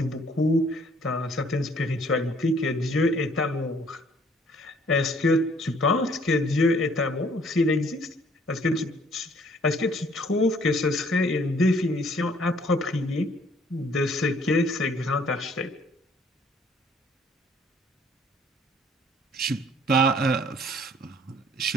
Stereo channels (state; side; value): normal; both; correlation 0.60